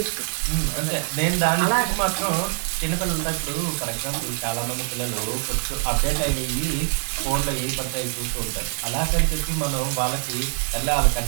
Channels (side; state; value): left; silent; 63 dB below the other